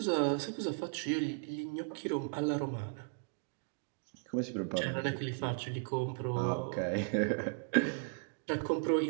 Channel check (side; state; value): left; silent; digital silence